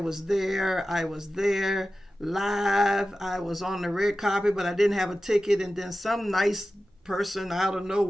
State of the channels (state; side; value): normal; both; correlation 0.94